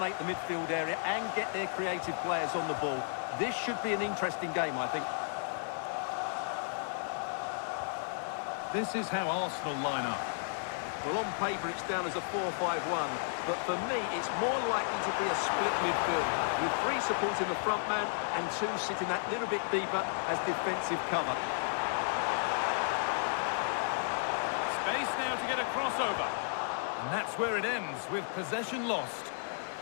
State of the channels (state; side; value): silent; right; digital silence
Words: the midfield area and get their creative players on the ball. This should be an interesting game, I think. This is how Arsenal line up. Well, on paper it's down as a 4-5-1, but for me it's more likely to be a split midfield, with three supporting the front man and two sitting that little bit deeper as defensive cover. Space now to get a crossover. And that's where it ends, with possession lost.